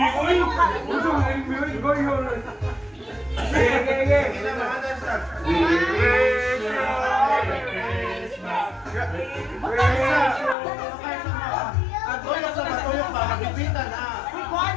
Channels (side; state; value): right; drops out; at 10.6 s